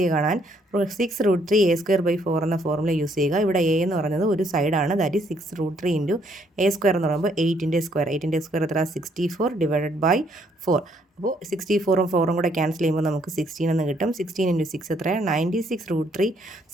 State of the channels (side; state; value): both; normal; correlation 0.69